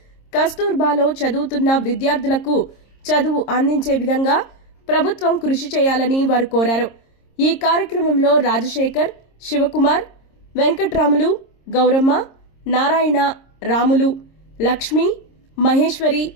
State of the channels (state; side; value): late; right; 26 ms